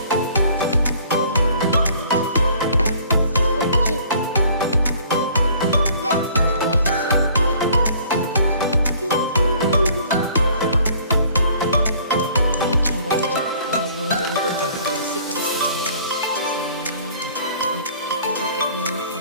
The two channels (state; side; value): inverted; both; correlation -0.55